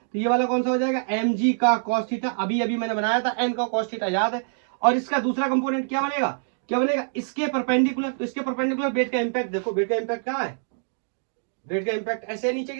ये वाला कौन सा हो जाएगा? mg का cos थीटा। अभी अभी मैंने बनाया था n का cos थीटा, याद है। और इसका दूसरा कंपोनेंट क्या बनेगा? इसके परपेंडिकुलर। तो इसके परपेंडिकुलर वेट का इंपैक्ट देखो, वेट का इंपैक्ट कहां है? वेट का इंपैक्ट ऐसे है नीचे की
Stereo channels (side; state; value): left; silent; digital silence